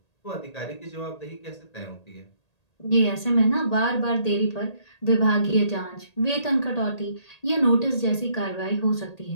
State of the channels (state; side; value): late; right; 1.8 ms